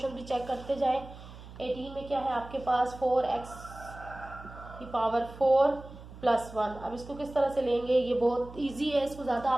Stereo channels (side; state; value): right; noise; hum, 16 dB below the sound